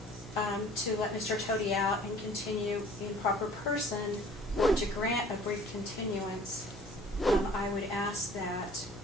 to let Mr. Toti out and continue in proper person, or to grant a brief continuance, I would ask that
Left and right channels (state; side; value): noise; right; hum, 19 dB below the sound